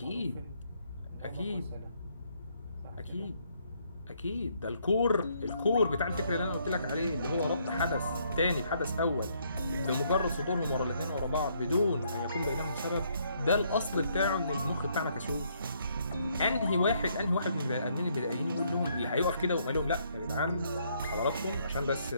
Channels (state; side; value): inverted; both; correlation -0.70